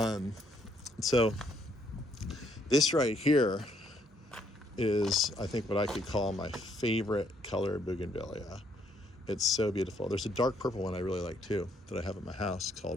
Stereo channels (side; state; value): both; normal; correlation 0.70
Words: So this right here is, I think, what I could call my favorite color Bougainvillea. It's so beautiful. There's a dark purple one I really like too that I have at my house